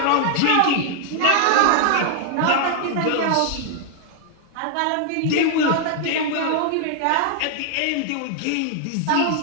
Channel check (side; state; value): both; different; correlation -0.01